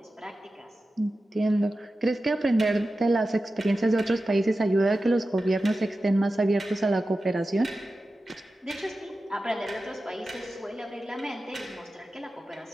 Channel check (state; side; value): normal; both; correlation 0.93